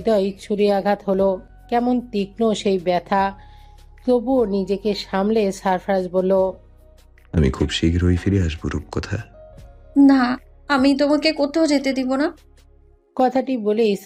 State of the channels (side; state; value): both; identical; correlation 1.00